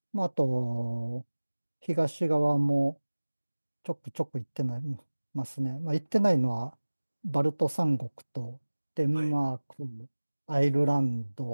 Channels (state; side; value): inverted; both; correlation -1.00